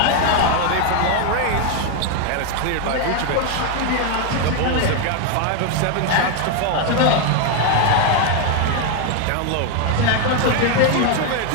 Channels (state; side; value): different; both; correlation 0.01